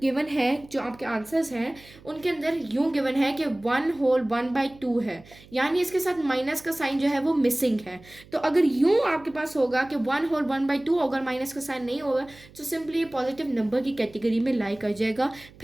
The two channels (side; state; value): right; noise; hum, 23 dB below the sound